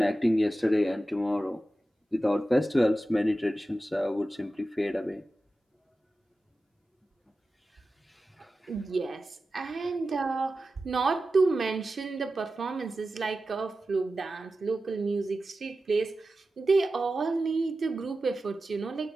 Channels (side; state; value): both; normal; correlation 0.94